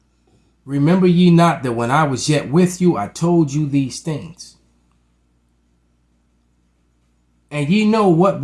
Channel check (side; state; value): both; identical; correlation 1.00